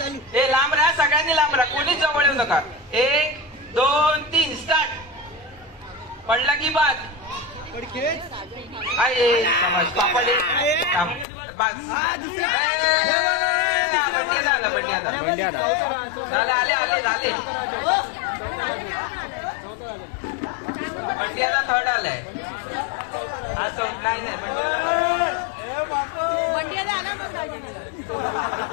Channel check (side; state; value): right; drops out; at 11.2 s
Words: हे लांब राहा. सगळ्यांनी लांब राहा. कोणीच जवळ येऊ नका. 1 2 3 स्टार्ट. पडला की बाद. पापड बंड्या झाले. आले बंड्याला थर्ड आलाय. हा चौथा नाही.